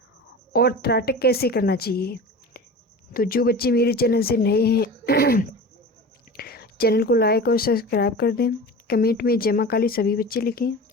और त्राटक कैसे करना चाहिए। तो जो बच्चे मेरे चैनल से नए हैं चैनल को लाइक और सब्सक्राइब कर दें। कमेंट में जय माँ काली सभी बच्चे लिखें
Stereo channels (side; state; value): both; normal; correlation 0.33